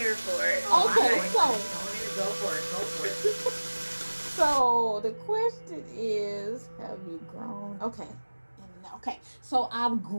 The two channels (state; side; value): inverted; both; correlation -1.00